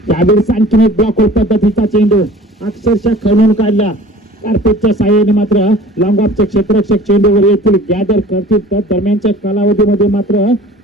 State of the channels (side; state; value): both; normal; correlation 0.46